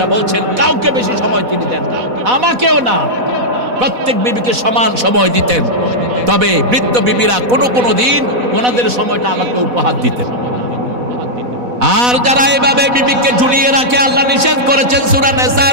বলছেন কাউকে বেশি সময় তিনি দেন না, আমাকেও না, প্রত্যেক বিবিকে সমান সময় দিতেন। তবে বৃদ্ধ বিবিরা কোনো দিন ওনাদের সময়টা আমাকে উপহার দিতেন। আর যারা এভাবে বিবিকে ঝুলিয়ে রাখে, আল্লাহ নিষেধ করেছেন সূরা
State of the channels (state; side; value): late; left; 4.1 ms